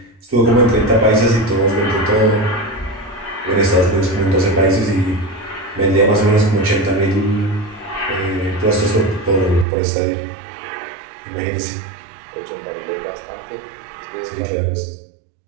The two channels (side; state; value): left; drops out; at 9.7 s